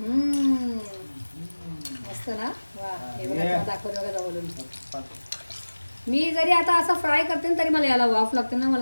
मस्त ना वा. हे बघा दाखवलं बघा बोलून. मी जरी आता असं फ्राय करते ना तरी मला याला वाफ लागते ना.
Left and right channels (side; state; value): both; inverted; correlation -1.00